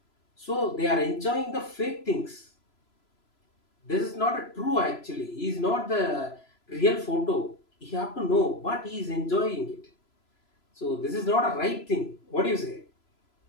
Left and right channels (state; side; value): late; right; 3.0 ms